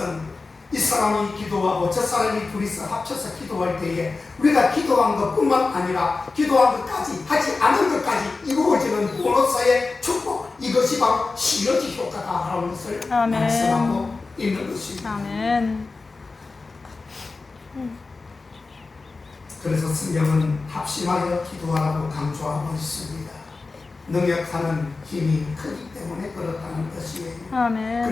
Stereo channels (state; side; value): quieter; right; 3.9 dB